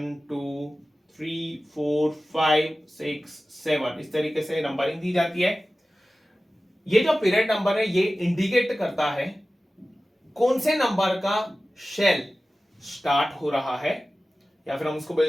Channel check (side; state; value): both; normal; correlation 0.96